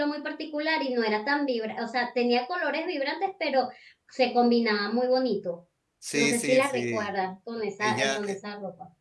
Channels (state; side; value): identical; both; correlation 1.00